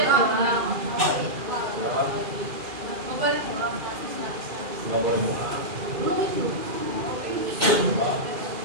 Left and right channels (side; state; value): left; late; 2.4 ms